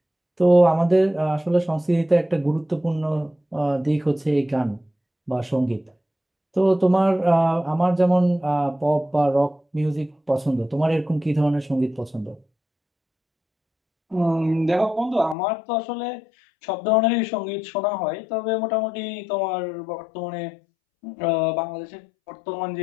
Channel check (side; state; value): right; drops out; at 15.4 s